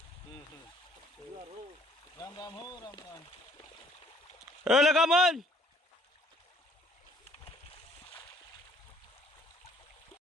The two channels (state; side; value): normal; both; correlation 0.60